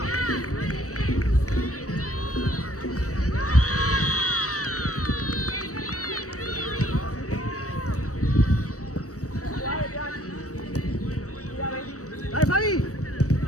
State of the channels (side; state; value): right; late; 0.66 ms